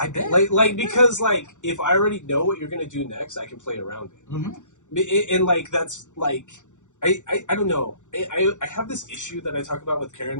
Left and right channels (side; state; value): right; late; 0.85 ms